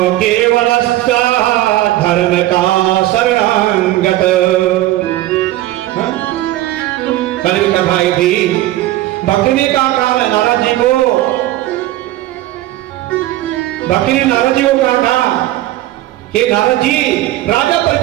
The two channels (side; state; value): left; quieter; 15.5 dB